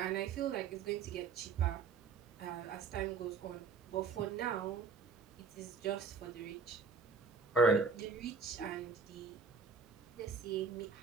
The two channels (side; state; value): left; quieter; 5.0 dB